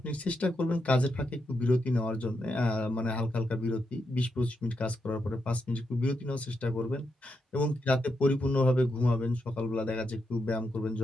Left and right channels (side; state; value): both; normal; correlation 0.83